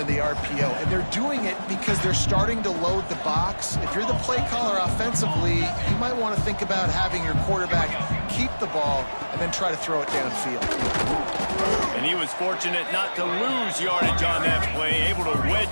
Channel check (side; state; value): both; inverted; correlation -1.00